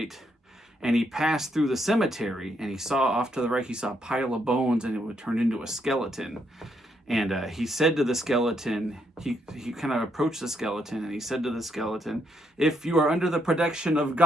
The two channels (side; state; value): both; normal; correlation 0.75